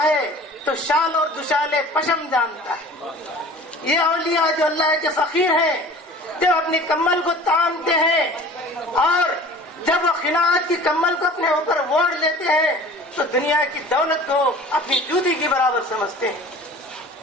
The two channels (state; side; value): normal; both; correlation 0.44